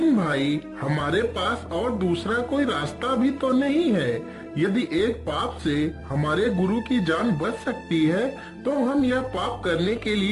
भाई, हमारे पास और दूसरा कोई रास्ता भी तो नहीं है। यदि एक पाप से हमारे गुरु की जान बच सकती है, तो हम यह पाप करने के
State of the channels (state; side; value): identical; both; correlation 1.00